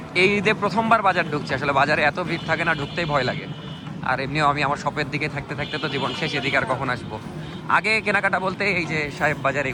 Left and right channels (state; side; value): identical; both; correlation 1.00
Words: এই ঈদে প্রথমবার বাজার ঢুকছি। আসলে বাজারে এত ভিড় থাকে না, ঢুকতেই ভয় লাগে। আর এমনিও আমি আমার শপের দিকে থাকতে থাকতে তো জীবন শেষ, এদিকে আর কখন আসবো। আগে কেনাকাটা বলতে এই যে সাহেব বাজার,